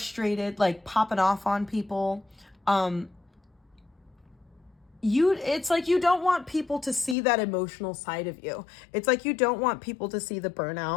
like popping off on people. It's like you don't want people to see that emotional side of you. It's like you don't want people to see the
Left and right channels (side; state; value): right; drops out; at 7.2 s